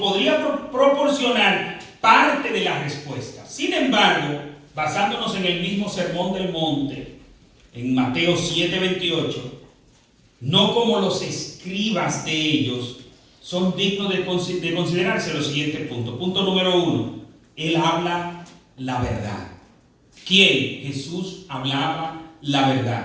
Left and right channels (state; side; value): identical; both; correlation 1.00